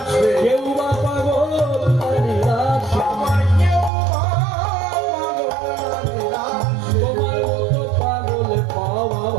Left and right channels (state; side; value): drops out; left; at 3.9 s